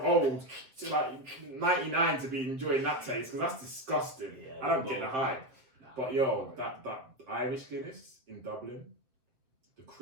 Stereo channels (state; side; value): late; left; 7.6 ms